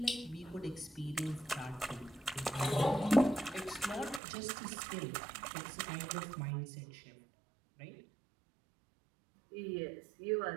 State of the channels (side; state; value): left; drops out; at 4.2 s